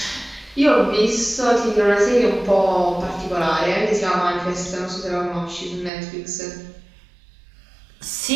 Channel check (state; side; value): drops out; left; at 5.9 s